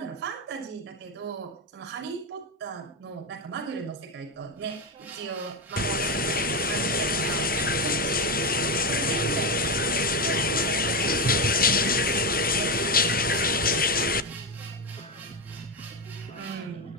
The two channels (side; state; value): both; normal; correlation 0.11